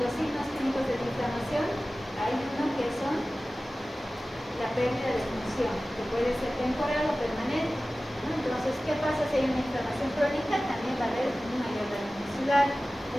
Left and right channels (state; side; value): normal; both; correlation 0.96